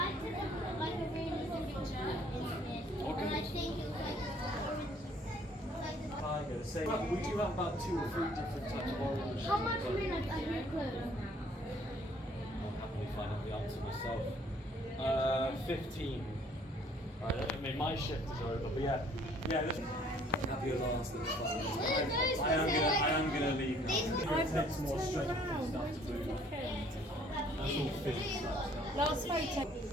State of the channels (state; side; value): normal; both; correlation 0.59